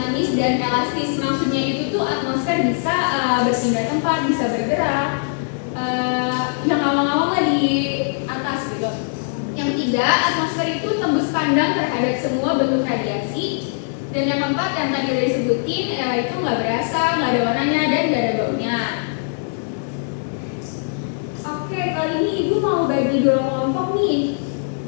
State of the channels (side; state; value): right; silent; digital silence